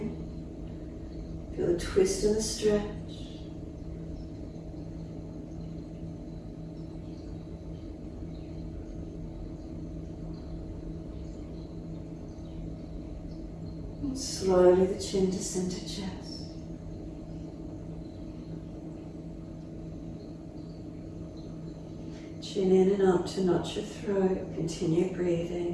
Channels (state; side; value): identical; both; correlation 1.00